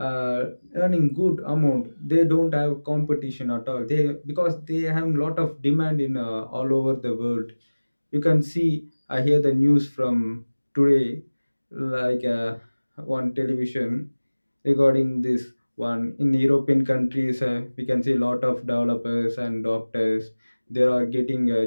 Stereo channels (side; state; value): both; inverted; correlation -1.00